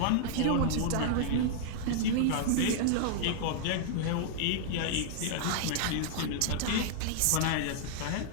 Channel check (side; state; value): both; different; correlation -0.01